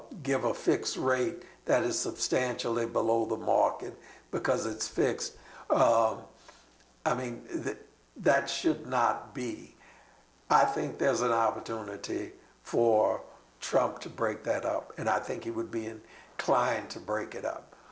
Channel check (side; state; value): both; identical; correlation 1.00